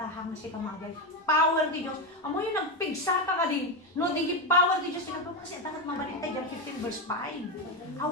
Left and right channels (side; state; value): both; normal; correlation 0.12